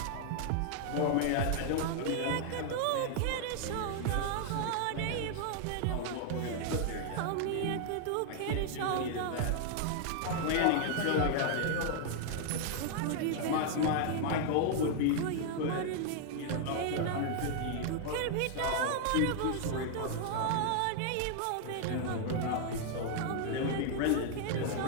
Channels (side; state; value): both; different; correlation 0.00